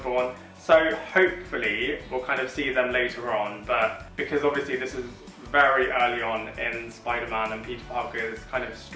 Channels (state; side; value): identical; both; correlation 1.00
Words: So hopefully we'll kind of see them later on, but because obviously this is very early on in Spider-Man and Peter Parker's kind of